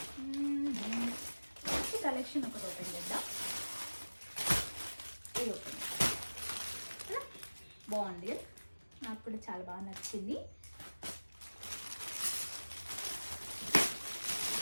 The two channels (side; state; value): both; inverted; correlation -1.00